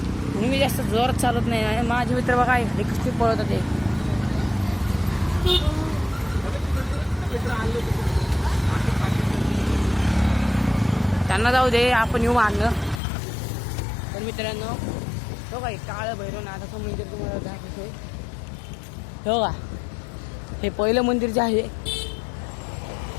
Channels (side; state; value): right; drops out; at 13.0 s